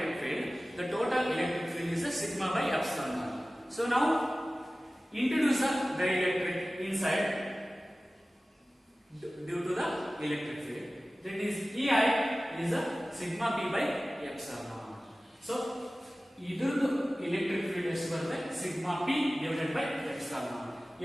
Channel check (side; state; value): both; normal; correlation 0.97